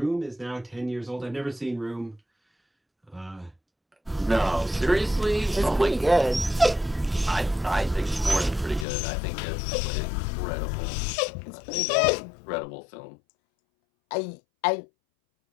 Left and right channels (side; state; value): right; drops out; at 8.8 s